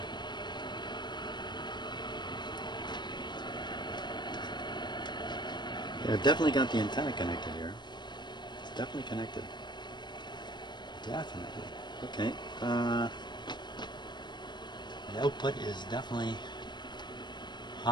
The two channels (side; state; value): right; late; 0.22 ms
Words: Yeah, I've definitely got the antenna connected here. It's definitely connected. Definitely. Okay. The output is definitely